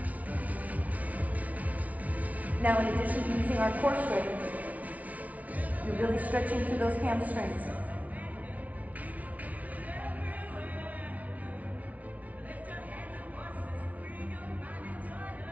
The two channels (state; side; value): late; left; 0.070 ms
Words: Now, in addition to using our core strength, you're really stretching through those hamstrings.